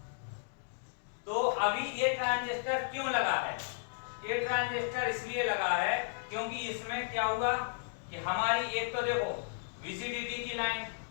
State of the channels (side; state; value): right; silent; digital silence